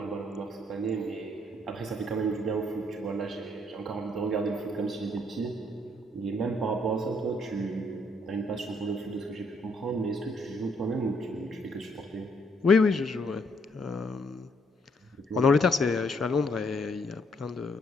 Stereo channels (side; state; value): both; normal; correlation 0.70